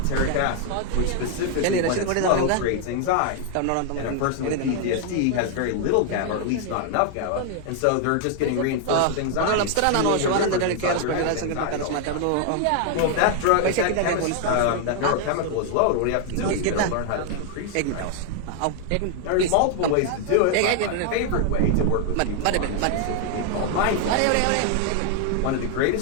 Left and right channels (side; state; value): both; different; correlation 0.00